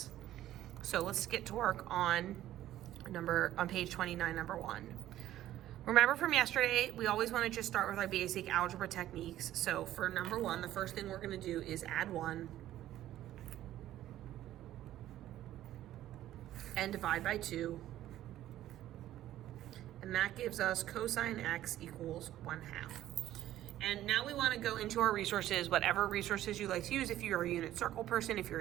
So let's get to work on page 29, number 1. Remember from yesterday, we always wanna just start with our basic algebra techniques. So for number 1, the first thing we're gonna do is add 1 and divide by 2, and that gives us cosine x equals 1/2. And now we want to go into our resources, whatever resources you like to use. If you're a unit circle person, if you're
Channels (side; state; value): left; quieter; 13.3 dB